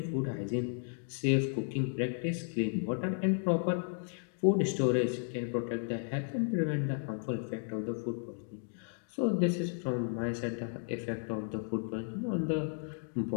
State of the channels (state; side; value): silent; right; digital silence